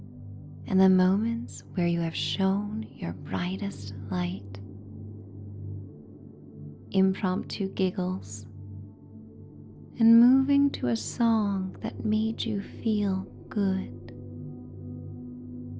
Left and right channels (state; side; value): identical; both; correlation 1.00